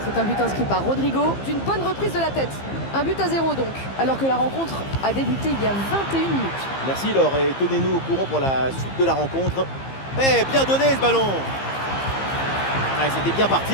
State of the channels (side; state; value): right; late; 15 ms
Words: C'est un but inscrit par Rodrigo d'une bonne reprise de la tête. Un but à 0 donc, alors que la rencontre a débuté il y a 21 minutes. Merci Laure et tenez-nous au courant pour la suite de la rencontre. Eh, bien donné ce ballon. Ouais, c'était bien